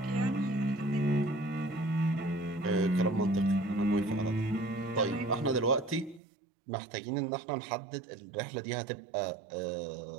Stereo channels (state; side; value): drops out; left; at 6.2 s